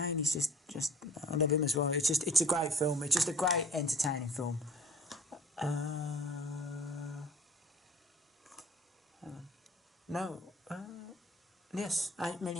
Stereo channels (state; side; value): normal; both; correlation 0.48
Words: he's just I love him as well. It's a great film. It's just a great entertaining film. No. Yes, 8